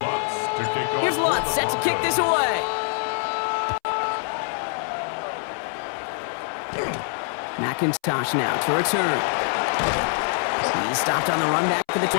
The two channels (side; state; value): right; silent; 62 dB below the other